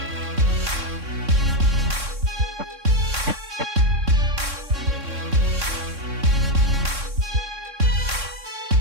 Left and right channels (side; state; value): left; late; 3.6 ms